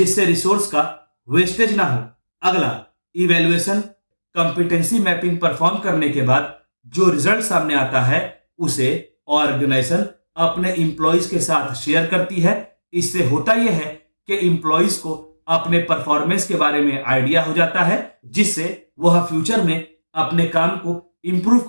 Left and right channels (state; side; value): inverted; both; correlation -1.00